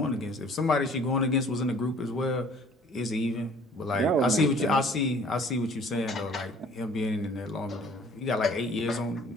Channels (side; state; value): both; normal; correlation 0.53